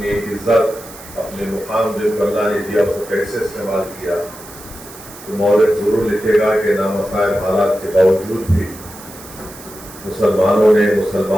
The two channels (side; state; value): right; noise; hiss, 17 dB below the sound